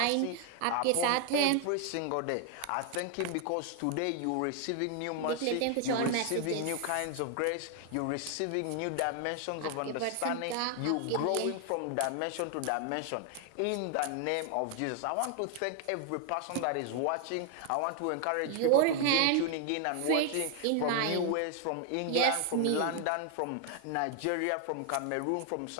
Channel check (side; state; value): both; different; correlation 0.00